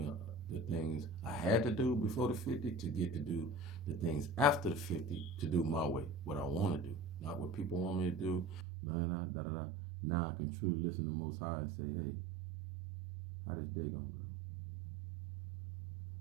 the things I had to do before the 50 to get to do the things after the 50 to do my way, what I want to do, not what people want me to do. Nah, nah, da, da, da. Now I can truly listen to the Most High and say, hey, how this day gonna go?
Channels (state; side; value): drops out; left; at 8.7 s